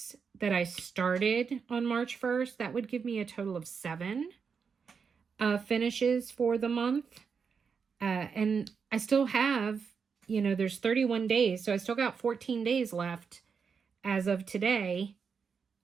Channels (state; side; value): quieter; left; 5.9 dB